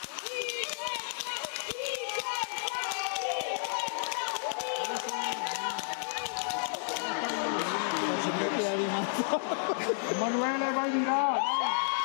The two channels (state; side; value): silent; right; digital silence